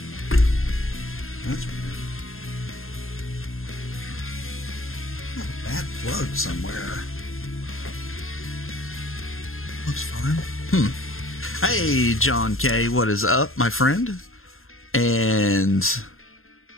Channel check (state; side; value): late; right; 0.61 ms